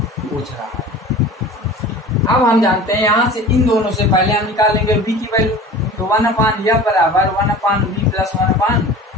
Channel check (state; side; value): normal; both; correlation 0.39